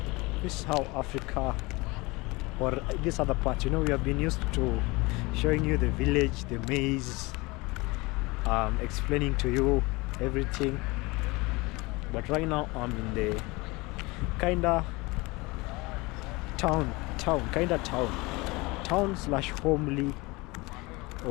This is how Africa, or this other part, you know, we have been used to showing you the village, the maze, explaining to you everything. But right now I'm in the kinda town slash homely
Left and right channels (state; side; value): quieter; right; 24.0 dB